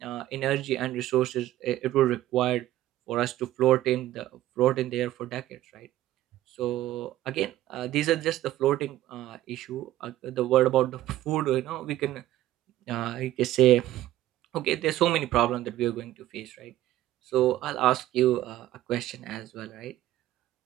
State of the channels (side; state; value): left; quieter; 14.4 dB